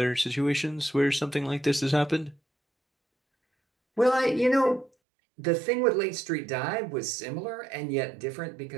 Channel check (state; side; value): drops out; left; at 4.9 s